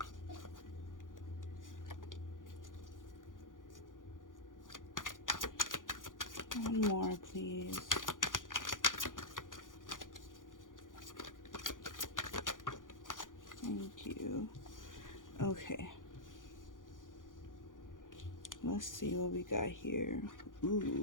One more, please. Thank you. Okay. Let's see what we got here.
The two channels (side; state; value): right; late; 0.89 ms